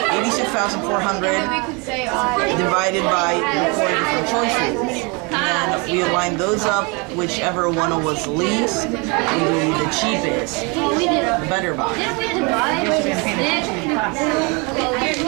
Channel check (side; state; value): left; quieter; 30.1 dB